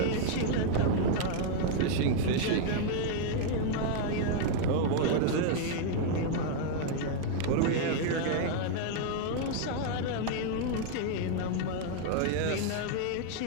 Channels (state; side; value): different; both; correlation 0.00